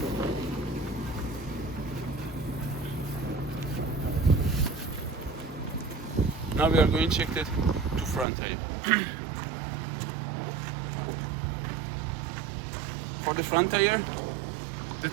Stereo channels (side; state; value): left; drops out; at 8.2 s